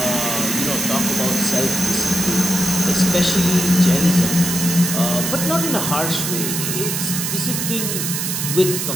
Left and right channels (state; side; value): noise; right; hiss, 2 dB below the sound